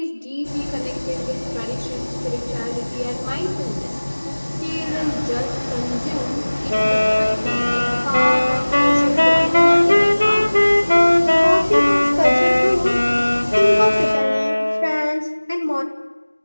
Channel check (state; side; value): inverted; both; correlation -1.00